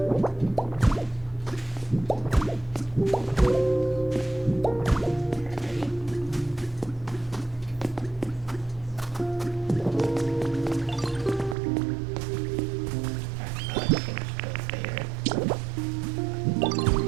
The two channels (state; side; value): drops out; left; at 11.6 s